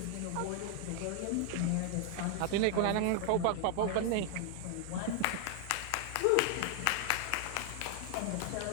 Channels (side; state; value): both; different; correlation 0.00